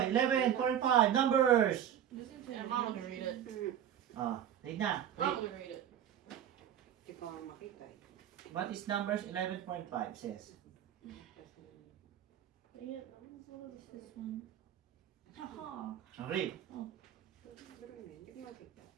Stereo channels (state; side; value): quieter; left; 10.1 dB